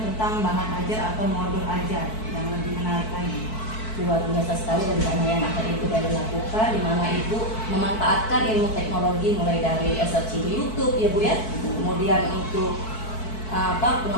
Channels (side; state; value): right; late; 4.6 ms